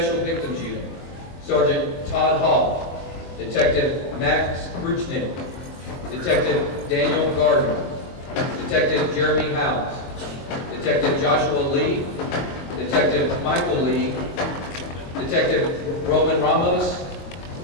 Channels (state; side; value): late; right; 22 ms